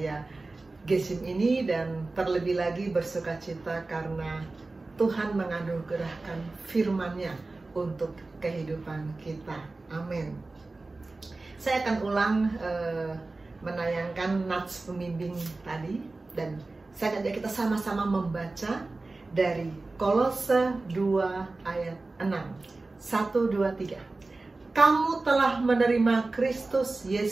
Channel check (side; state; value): left; quieter; 3.3 dB